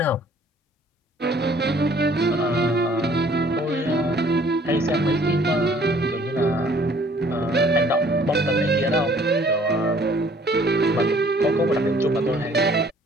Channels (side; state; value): both; normal; correlation 0.57